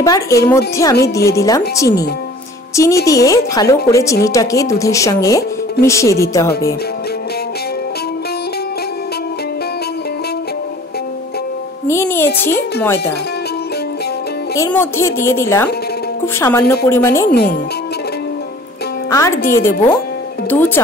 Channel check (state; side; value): normal; both; correlation 0.49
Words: এর মধ্যে আমি দিয়ে দিলাম চিনি। চিনি দিয়ে ভালো করে চিনিটাকে দুধের সঙ্গে মিশিয়ে দিতে হবে। নিয়ে নিয়েছি ময়দা। এর মধ্যে দিয়ে দিলাম খুব সামান্য পরিমাণে নুন আর দিয়ে দেব 2